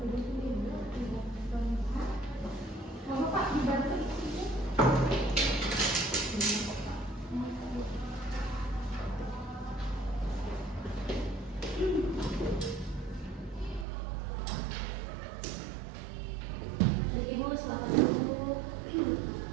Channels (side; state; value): left; drops out; at 13.9 s